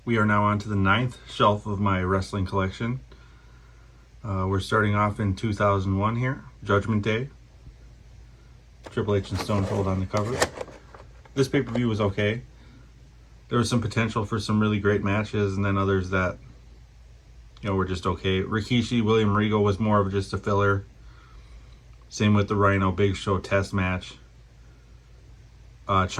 We are now on to the 9th shelf of my wrestling collection. We're starting off in 2001 here, Judgment Day. Triple H and Stone Cold on the cover. This pay-per-view was okay. There was some potential for some really great matches, and then others that, were just okay. Rikishi, William Regal was more of just a filler. Same with the Rhino Big Show test match.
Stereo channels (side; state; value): both; identical; correlation 1.00